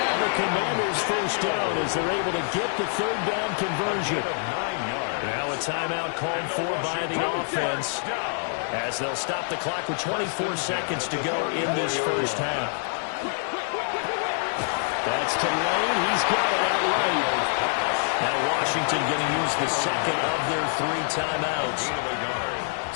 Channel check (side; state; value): right; silent; 61 dB below the other